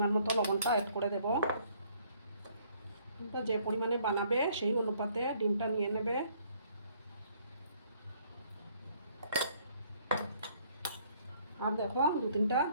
মতো লবণটা অ্যাড করে দেব। যে পরিমাণে বানাবে সেই অনুপাতে ডিমটা নিয়ে নেবে। আর দেখো 2-3টা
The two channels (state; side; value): inverted; both; correlation -0.63